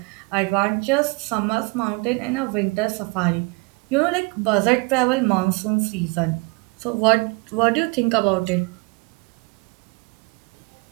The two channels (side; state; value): left; quieter; 28.6 dB